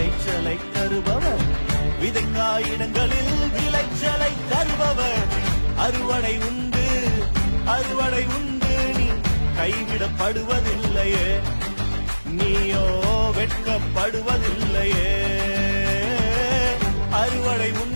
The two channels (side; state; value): both; inverted; correlation -1.00